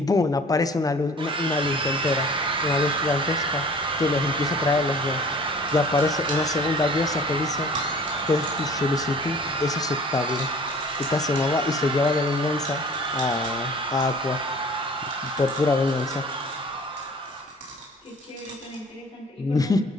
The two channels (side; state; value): both; normal; correlation 0.47